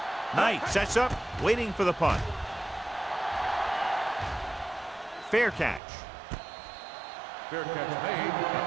Knight sets up, waiting for the punt. Fair catch. Fair catch made at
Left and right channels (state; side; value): drops out; left; at 5.8 s